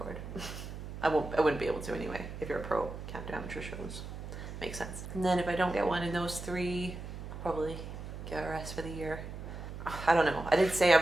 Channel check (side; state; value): right; noise; hum, 9 dB below the sound